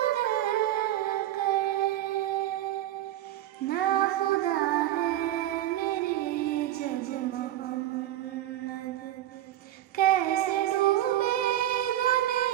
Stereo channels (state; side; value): quieter; left; 13.3 dB